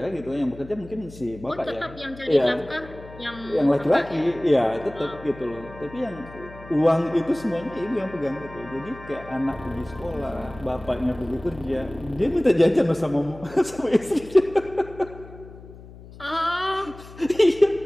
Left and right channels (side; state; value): left; noise; hum, 18 dB below the sound